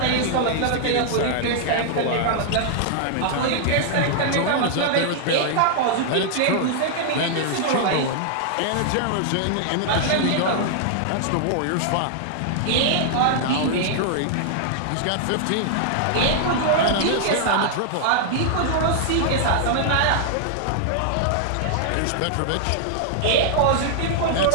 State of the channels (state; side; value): different; both; correlation -0.01